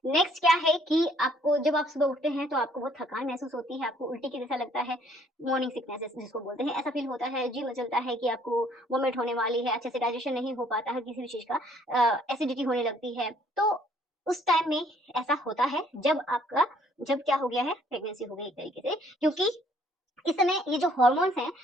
नेक्स्ट क्या है कि आपको जब आप सुबह उठते हैं तो आपको बहुत थकान महसूस होती है, आपको उल्टी के जैसा लगता है, मॉर्निंग सिकनेस जिसको बोलते हैं, ऐसा फील होता है, जी मचलता है कि आपको वोमिट होने वाली है, अच्छे से डाइजेशन नहीं हो पाता है किसी भी चीज़ का, एसिडिटी होने लगती है। तो उस टाइम में ऐसा होता है जब क्या हो गया है, प्रेगनेंसी हो गई एक तरीके से, क्योंकि इस समय ये जो हॉर्मोन्स हैं,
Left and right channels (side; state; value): both; normal; correlation 0.62